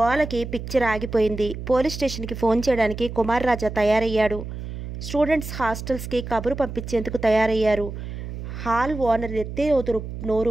పిక్చర్ ఆగిపోయింది. పోలీస్ స్టేషన్కి ఫోన్ చేయడానికి కుమార్ రాజా తయారయ్యాడు. స్టూడెంట్స్ హాస్టల్స్కి కబురు పంపించేందుకు తయారయ్యారు. హాల్ ఓనర్ ఎత్తే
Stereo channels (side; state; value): right; noise; hum, 8 dB below the sound